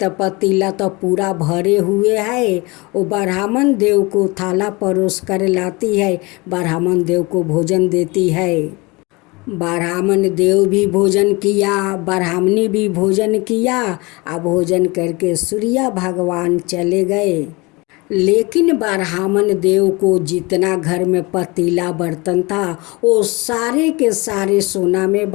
पतीला तो पूरा भरे हुए है। वो ब्राह्मण देव को थाला परोस कर लाती है, ब्राह्मण देव को भोजन देती है। ब्राह्मण देव भी भोजन किया, ब्राह्मणी भी भोजन किया। अब भोजन करके सूर्य भगवान चले गए। लेकिन ब्राह्मण देव को जितना घर में पतीला बर्तन था वो सारे के सारे सोना में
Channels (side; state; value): right; quieter; 25.1 dB